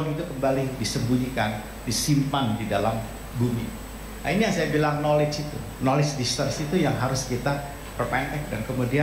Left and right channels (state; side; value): identical; both; correlation 1.00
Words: itu kembali disembunyikan, disimpan di dalam bumi. Nah, ini yang saya bilang knowledge itu, knowledge distance itu yang harus kita perpendek dan